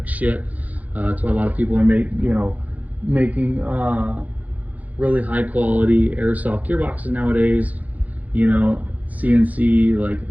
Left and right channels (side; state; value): left; late; 0.077 ms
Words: shit. That's why a lot of people are making really high quality airsoft gearboxes nowadays. You know, CNC, like,